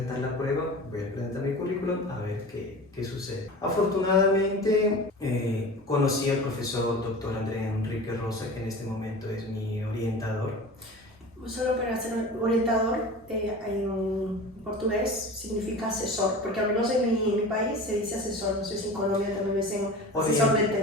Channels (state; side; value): normal; both; correlation 0.35